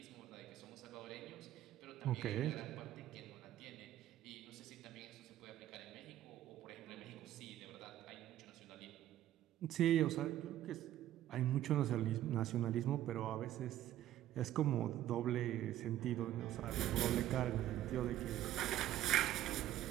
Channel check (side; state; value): left; quieter; 13.0 dB